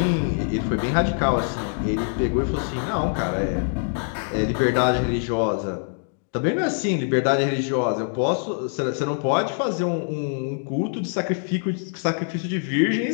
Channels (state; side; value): silent; right; digital silence